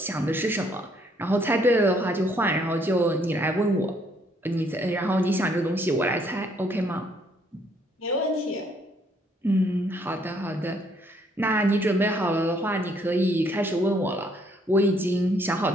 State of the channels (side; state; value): both; normal; correlation 0.67